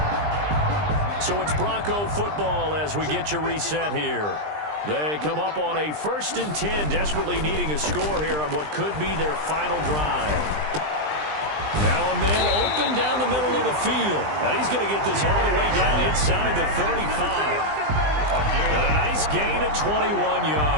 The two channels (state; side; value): late; left; 20 ms